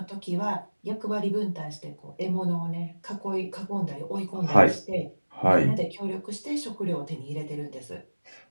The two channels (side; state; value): both; inverted; correlation -1.00